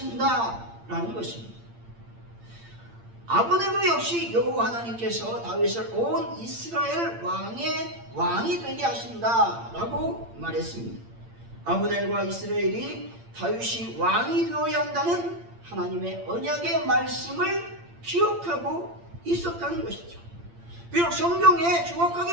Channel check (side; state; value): left; late; 8.7 ms